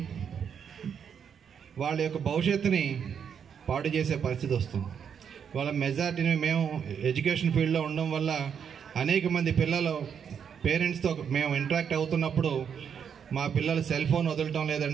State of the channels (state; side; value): quieter; left; 7.5 dB